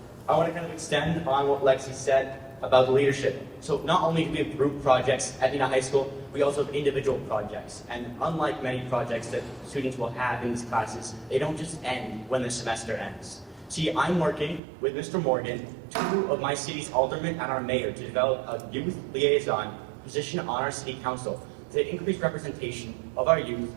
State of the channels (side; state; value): left; drops out; at 14.6 s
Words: I want to kind of extend on what Lexi said about leadership. So not only do we have group projects at Neenah High School, we also have individual projects. And unlike many projects that students will have in these classes, they don't just end when the semester ends. See, I'm working with Mr. Morgan, two of my city's aldermen and our mayor, to develop a youth liaison position on our city council to increase representation of our youth